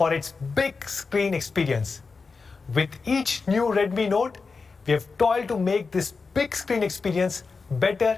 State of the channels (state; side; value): quieter; right; 4.6 dB